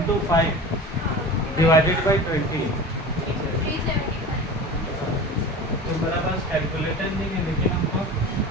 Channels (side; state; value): both; normal; correlation 0.34